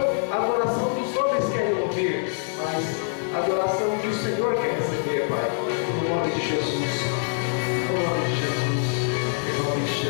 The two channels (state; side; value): silent; right; 62 dB below the other